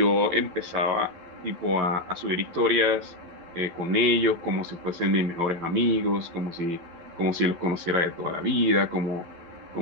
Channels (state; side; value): late; left; 12 ms